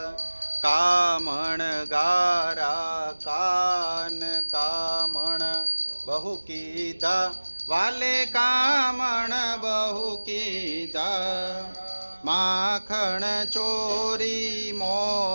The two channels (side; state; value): both; inverted; correlation -1.00